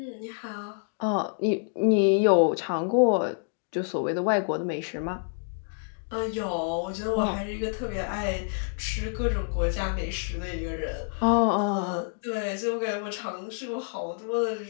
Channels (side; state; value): right; silent; digital silence